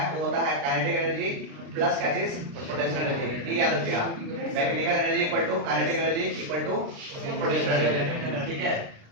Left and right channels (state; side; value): late; left; 36 ms